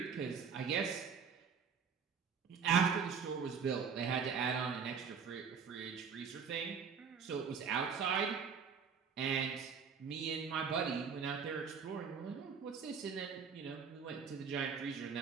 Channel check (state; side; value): quieter; left; 6.2 dB